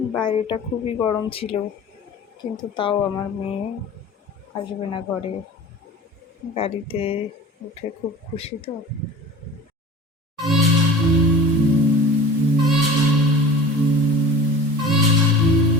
বাইরেটা খুবই গরম ছিল, কিন্তু তাও আমার মেয়ে আসবে না ঘরে। গাড়িতে উঠে খুব খুশি তো।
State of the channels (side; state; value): both; normal; correlation 0.39